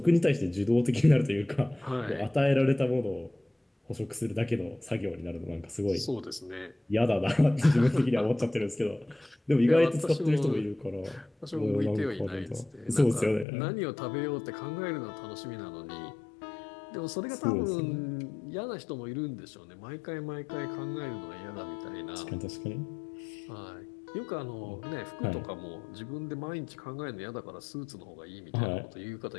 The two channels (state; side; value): drops out; right; at 13.5 s